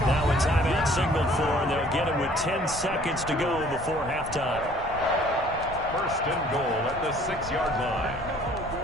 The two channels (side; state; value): left; noise; rumble, 13 dB below the sound